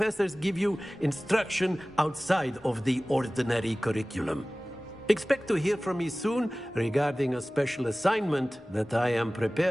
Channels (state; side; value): normal; both; correlation 0.98